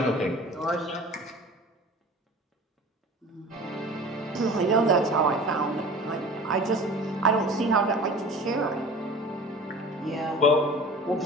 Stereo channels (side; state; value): both; normal; correlation 0.40